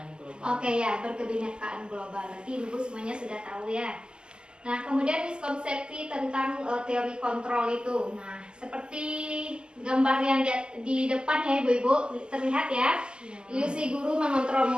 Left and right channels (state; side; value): late; left; 0.048 ms